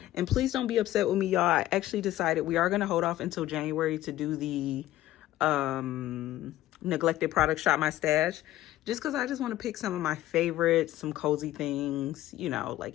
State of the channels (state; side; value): quieter; right; 14.7 dB